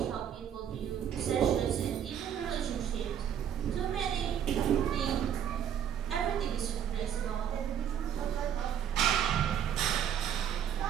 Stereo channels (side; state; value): left; quieter; 9.1 dB